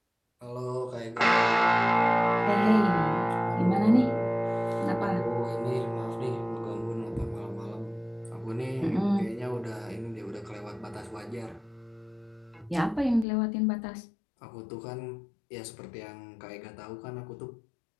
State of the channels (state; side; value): drops out; right; at 13.2 s